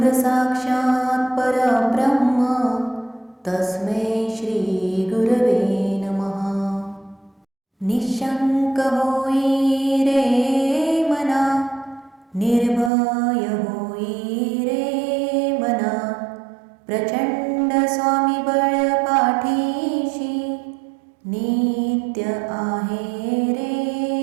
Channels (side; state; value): left; drops out; at 12.9 s